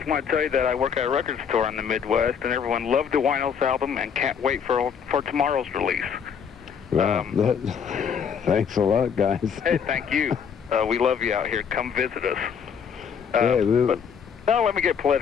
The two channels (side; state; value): right; quieter; 7.1 dB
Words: I want to tell you that I work at a record store in the Midwest, and everyone loved the Winos album and can't wait for tomorrow's release. Well, thanks a lot, guys. Hey, thank you. We love you out here. Come visit us. Yeah, Now let me get